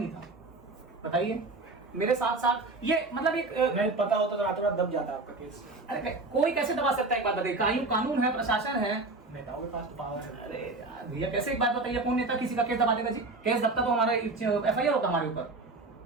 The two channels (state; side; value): quieter; left; 3.3 dB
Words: था, बताइए। मेरे साथ साथ ये मतलब एक नहीं पता होता तो रातों रात दब जाता आपका केस। अरे कोई कैसे दबा सकता है? एक बात बताइए, कानून है, प्रशासन है, नेताओं के पास तो पावर है। अरे यार भैया कैसे, एक बात बताइए, कौन नेता किसी का केस दबा देगा जी? केस दबता तो हमारा एफआईआर होता हमारे ऊपर,